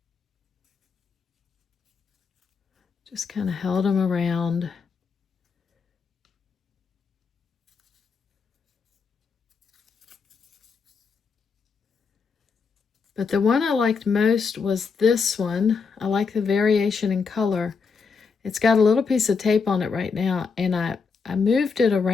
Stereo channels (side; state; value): right; quieter; 5.3 dB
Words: Just kind of held them around. But the one I liked most was this one. I like the variation in color. It's got a little piece of tape on it right now, and I moved it